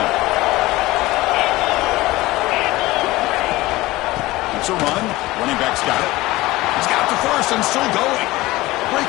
It's a run. Running back's got it. He's got the first and still going.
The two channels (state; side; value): quieter; right; 19.1 dB